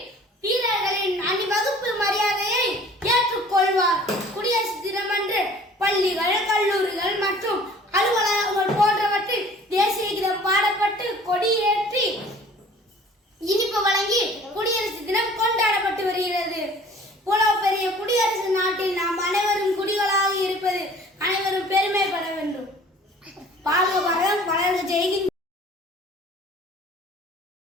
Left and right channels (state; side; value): normal; both; correlation 0.50